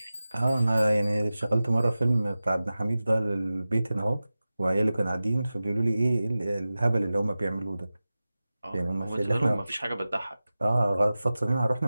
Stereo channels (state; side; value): inverted; both; correlation -0.95